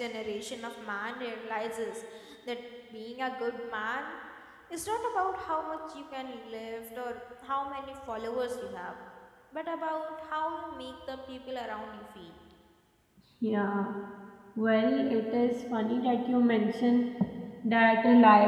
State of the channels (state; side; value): identical; both; correlation 1.00